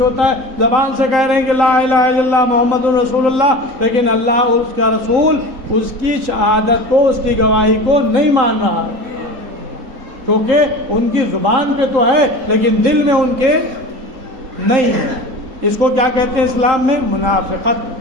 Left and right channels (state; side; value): late; left; 3.8 ms